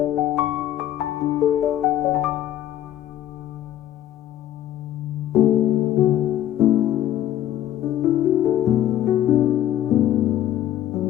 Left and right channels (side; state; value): right; quieter; 12.3 dB